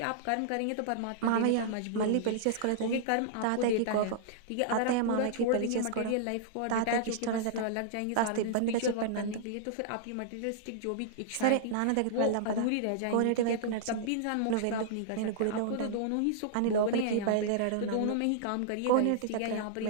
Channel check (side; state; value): both; different; correlation -0.01